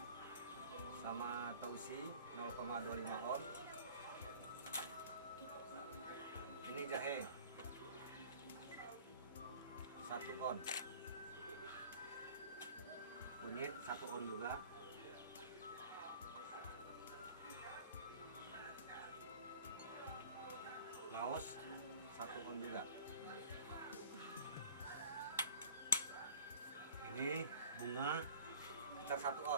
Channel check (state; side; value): inverted; both; correlation -0.47